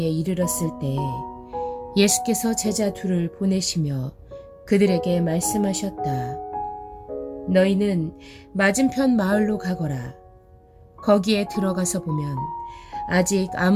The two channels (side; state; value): both; identical; correlation 1.00